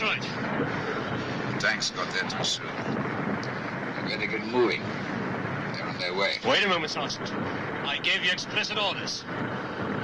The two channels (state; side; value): identical; both; correlation 1.00